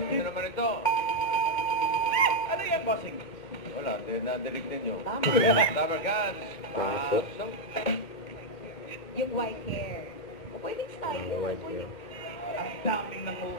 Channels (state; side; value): late; right; 2.1 ms